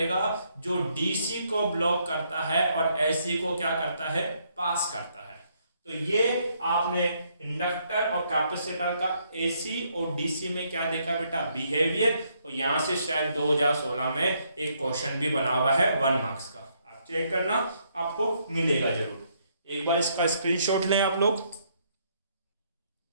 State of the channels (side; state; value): both; inverted; correlation -0.72